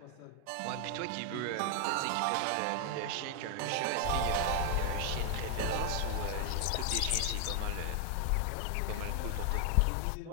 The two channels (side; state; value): both; different; correlation 0.00